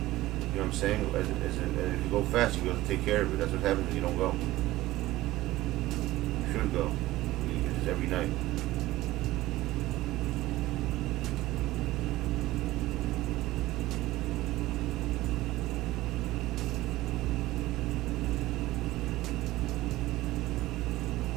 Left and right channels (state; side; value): quieter; left; 17.4 dB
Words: know what I'm saying? If you go fast, you have to take care of it. That's what happens when you don't go. You should go. It's every night.